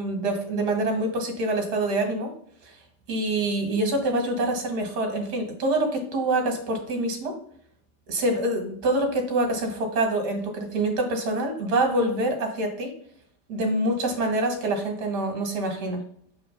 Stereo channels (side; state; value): left; late; 5.6 ms